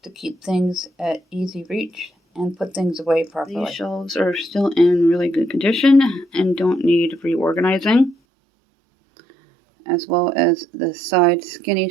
to keep things at easy reach and put things away properly. These shelves are still in really good condition and don't need reorganizing, as well as the side skinny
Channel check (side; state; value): left; drops out; at 8.2 s